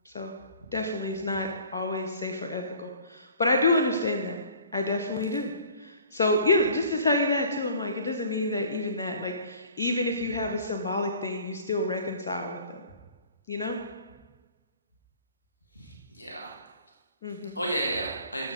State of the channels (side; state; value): both; inverted; correlation -0.50